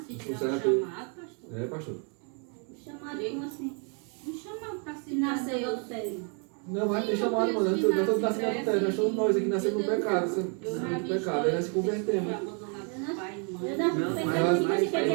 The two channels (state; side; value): quieter; left; 39.0 dB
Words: se tiver Funciona um tudo. chamado, pastor. É, pastor. Chamado como assim? Um chamado para se Nasceu em adultério. Não, mas tem chamado, mano. Nós todos nascemos no adultério. Nós somos nós aqui nascemos no pecado. No pecado. Aí nós se convertemos. Eu Não, não mas- pensando tipo mas assim, porque é a